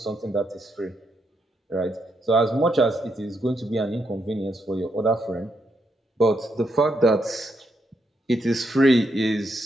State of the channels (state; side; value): normal; both; correlation 0.79